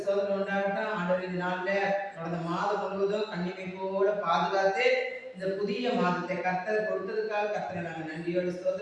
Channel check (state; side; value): identical; both; correlation 1.00